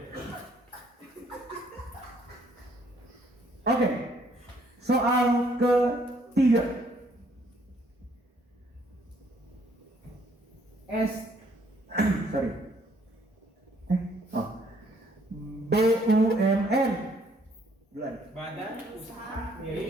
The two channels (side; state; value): both; normal; correlation 0.65